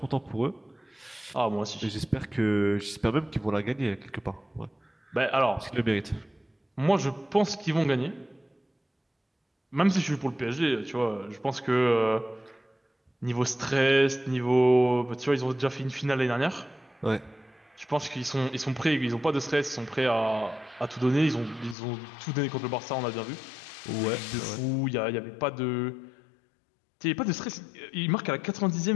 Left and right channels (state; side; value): drops out; right; at 21.8 s